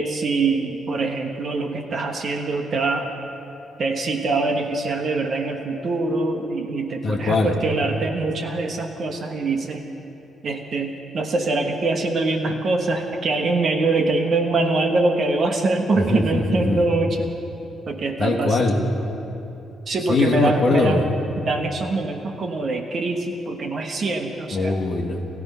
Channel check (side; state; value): both; normal; correlation 0.75